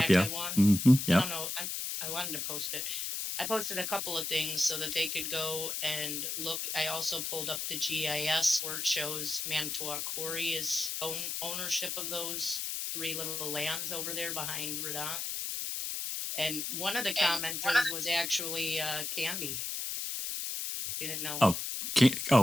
yeah. Mm-hmm, yeah. I don't know. I wanted to post it. I posted a couple of things so that they could go and look. I also pulled up the GIS where it shows Manitowoc Quarry is ownership of those 3 little lands over there behind Redon. And one of the commenters was actually Candy. You didn't know.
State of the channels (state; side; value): noise; left; hiss, 3 dB below the sound